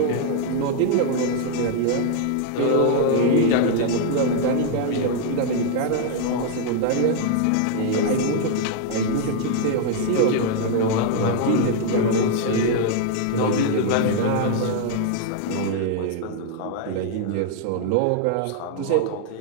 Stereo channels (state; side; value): different; both; correlation 0.00